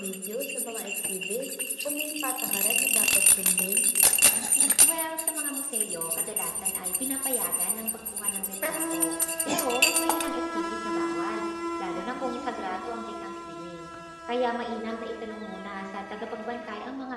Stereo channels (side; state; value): both; identical; correlation 1.00